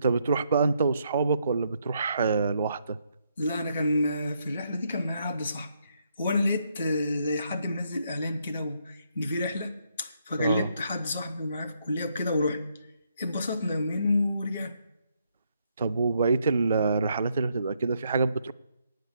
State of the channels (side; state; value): both; inverted; correlation -0.75